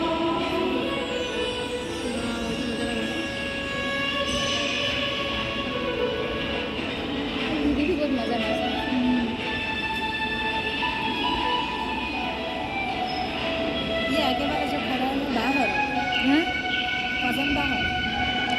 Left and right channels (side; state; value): both; identical; correlation 1.00